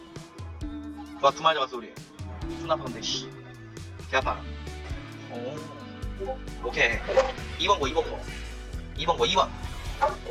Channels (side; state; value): both; identical; correlation 1.00